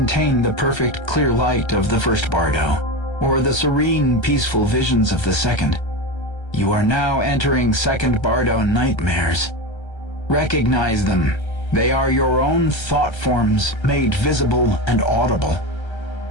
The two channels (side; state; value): right; late; 1.3 ms